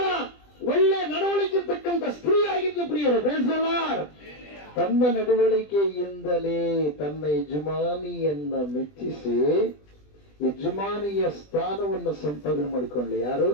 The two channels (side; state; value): right; late; 20 ms